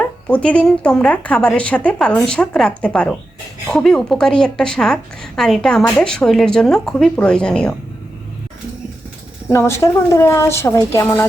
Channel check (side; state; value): both; normal; correlation 0.90